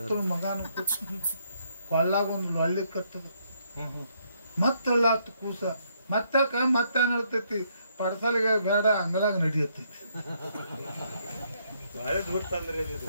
ಮಗನು ಕೂತ ಕೊಳ್ಳಾಗ ಒಂದು ಒಳ್ಳೆ ಕತ್ತದ ಮತ್ತಲ್ಲಾತ್ ಕೂಸ ಮತ್ತಕ ಮತ್ತೆ ಹೇಳ್ತೈತಿ ಪಡ್ಸಲಿಗೆ ಬೇಡ ಅಂಗಳಾಗ ನಡಿಯತ್ತೈತಿ.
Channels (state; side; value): inverted; both; correlation -0.73